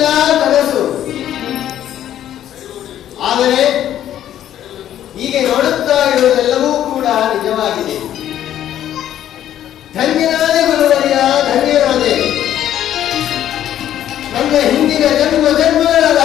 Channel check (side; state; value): right; quieter; 11.4 dB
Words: ಕನಸು. ಆದರೆ ಹೀಗೆ ನೋಡುತ್ತಾ ಇರುವುದೆಲ್ಲವೂ ಕೂಡ ನಿಜವಾಗಿದೆ. ಧನ್ಯನಾದೆ ಗುರುವರಿಯ, ಧನ್ಯನಾದೆ. ನನ್ನ ಹಿಂದಿನ ಜನ್ಮಗಳ